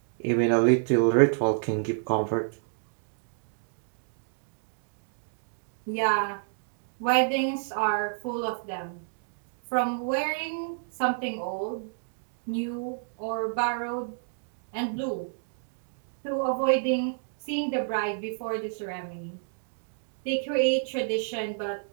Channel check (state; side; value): silent; left; digital silence